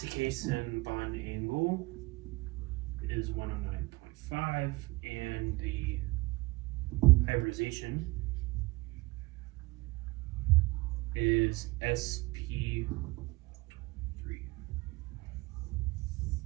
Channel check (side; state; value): left; quieter; 23.1 dB